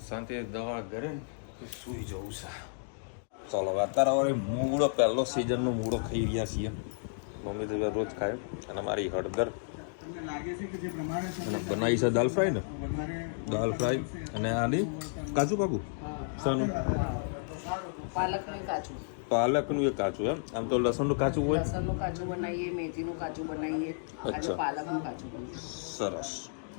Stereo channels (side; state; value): right; silent; digital silence